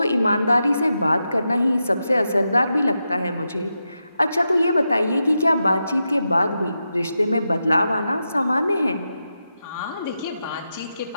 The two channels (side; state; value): both; inverted; correlation -0.88